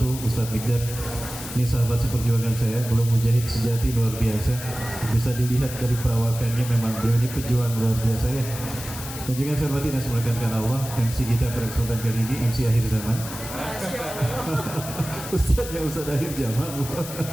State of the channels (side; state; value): left; noise; hiss, 10 dB below the sound